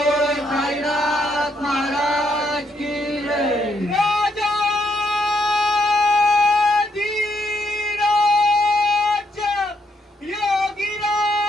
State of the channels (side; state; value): both; normal; correlation 0.75